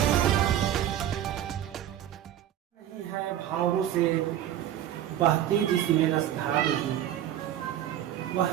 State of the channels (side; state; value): left; quieter; 11.4 dB